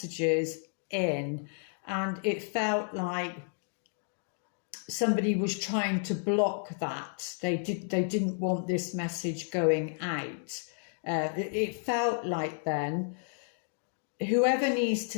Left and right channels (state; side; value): silent; right; 57 dB below the other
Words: in, and it felt like somebody was trying to block that. They didn't want this message going out. It felt like then whoever needs